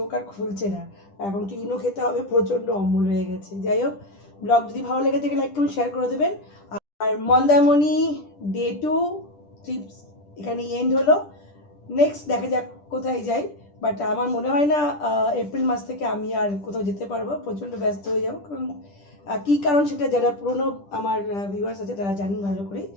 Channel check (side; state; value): right; late; 10 ms